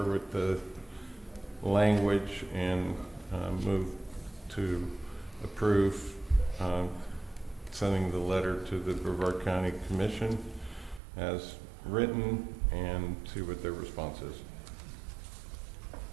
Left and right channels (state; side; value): drops out; left; at 11.0 s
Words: with the language and move to approve sending the letter to the Brevard County Commission as written, and see what their response is.